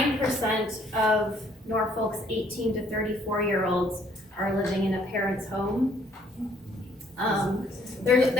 of Norfolk's 18 to 34-year-olds are living in a parent's home.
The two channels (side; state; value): both; normal; correlation 0.64